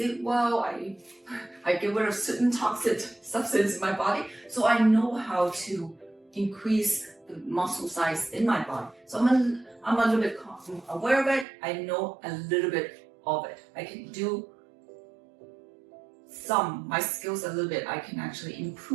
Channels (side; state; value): left; drops out; at 11.5 s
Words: well. I get rid of certain toxic substance in my body. So I know how to increase the muscle size in my body. So I'm a little bit aware of it. I know a little bit of it. I can do my skills a little bit. I can actually